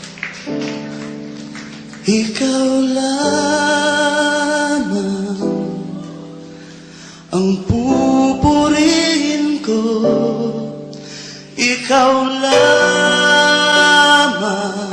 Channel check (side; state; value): both; identical; correlation 1.00